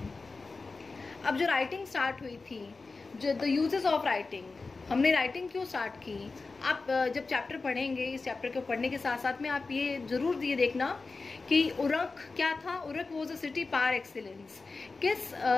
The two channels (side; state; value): right; quieter; 4.0 dB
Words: अब जो राइटिंग स्टार्ट हुई थी, जो द यूजेस ऑफ राइटिंग, हमने राइटिंग क्यों स्टार्ट की? आप जब चैप्टर पढ़ेंगे, इस चैप्टर को पढ़ने के साथ साथ में आप ये जरूर ये देखना कि उरक क्या था। Uruk was a city par excellence.